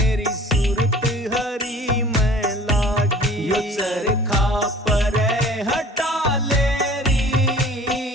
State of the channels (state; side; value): normal; both; correlation 0.48